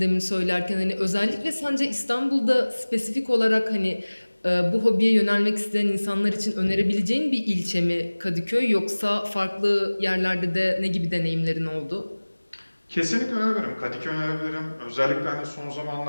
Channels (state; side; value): inverted; both; correlation -1.00